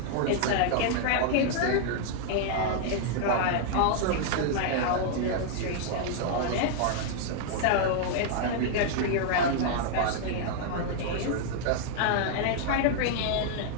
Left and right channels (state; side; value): different; both; correlation -0.01